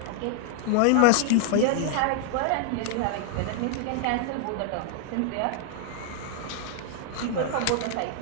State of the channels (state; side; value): different; both; correlation 0.00